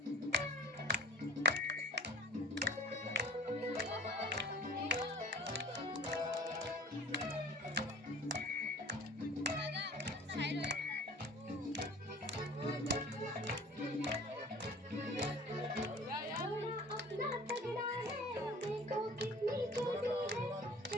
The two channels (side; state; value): both; normal; correlation 0.45